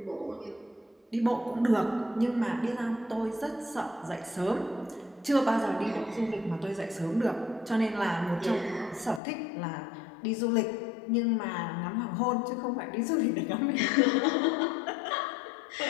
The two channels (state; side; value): drops out; right; at 9.2 s